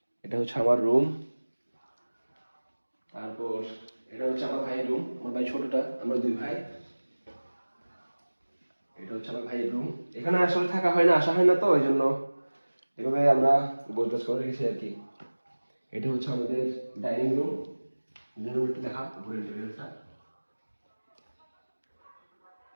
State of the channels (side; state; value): both; inverted; correlation -1.00